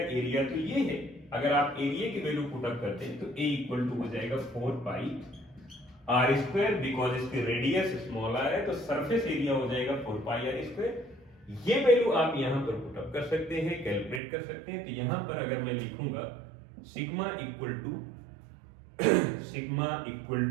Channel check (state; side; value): drops out; left; at 14.2 s